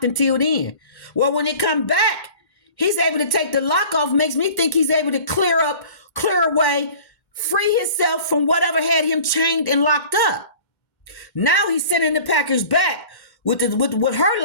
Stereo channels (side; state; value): right; late; 2.1 ms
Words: until then. Well, when it come back, he's able to take the lock off. Makes me think he's able to clear away, free himself from whatever had him chained and locked up. Now he's sending the package back with her